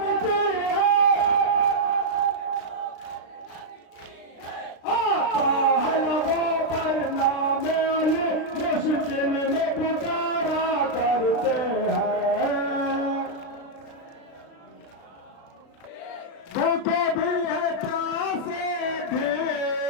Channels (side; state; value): right; late; 36 ms